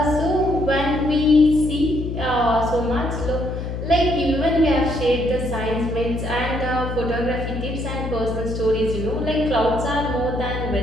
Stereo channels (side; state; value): left; noise; hum, 5 dB below the sound